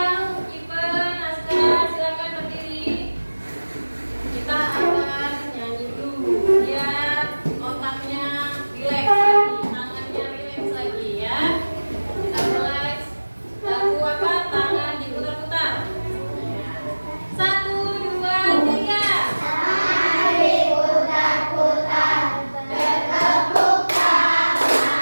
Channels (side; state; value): both; inverted; correlation -1.00